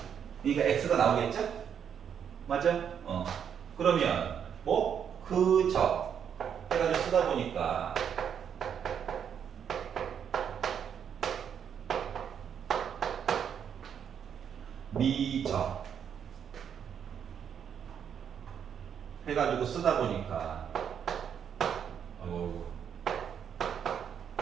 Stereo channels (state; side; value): quieter; left; 8.1 dB